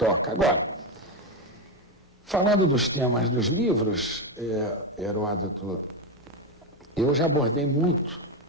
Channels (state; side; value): normal; both; correlation 0.11